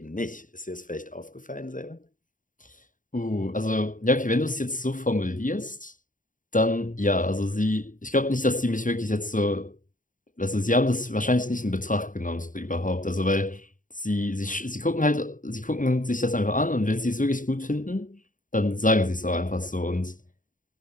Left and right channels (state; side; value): late; right; 0.38 ms